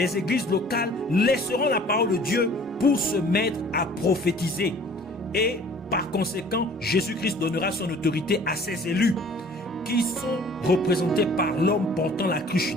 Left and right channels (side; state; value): both; normal; correlation 0.51